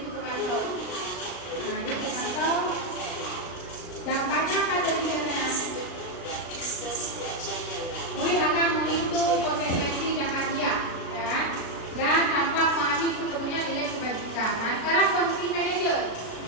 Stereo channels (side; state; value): right; late; 36 ms